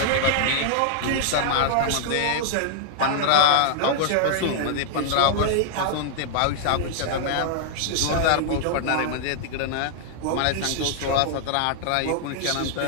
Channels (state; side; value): different; both; correlation -0.01